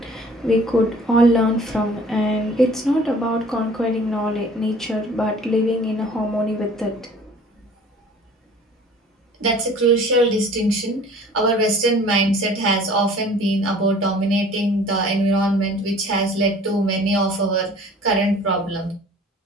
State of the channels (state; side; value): normal; both; correlation 0.49